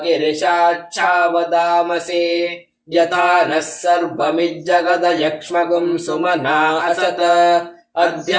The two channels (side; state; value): both; identical; correlation 1.00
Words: ಗಿರಿಶಾಚ್ಛಾವದಾಮಸಿ. ಯಥಾ ನಃ ಸರ್ವಮಿಜ್ಜಗದ ಯಕ್ಷ್ಮಗುಂ ಸುಮನಾ ಅಸತ. ಅದ್ಯ